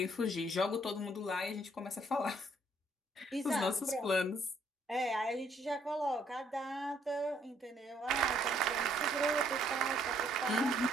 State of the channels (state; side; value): normal; both; correlation 0.67